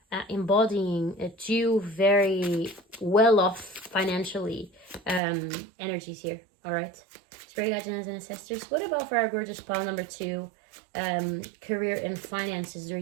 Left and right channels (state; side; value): drops out; left; at 5.2 s